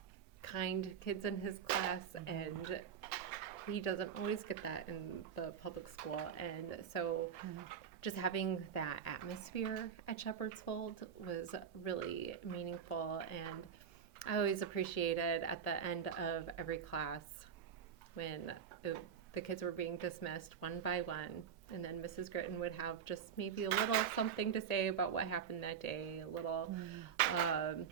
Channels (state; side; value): quieter; left; 7.6 dB